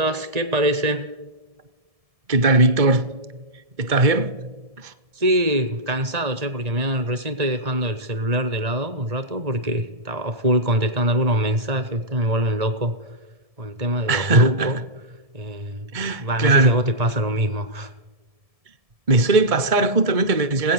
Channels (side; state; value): left; late; 1.7 ms